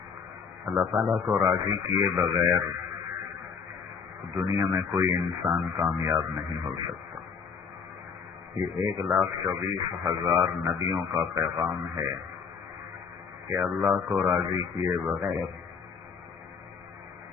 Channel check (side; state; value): right; quieter; 5.9 dB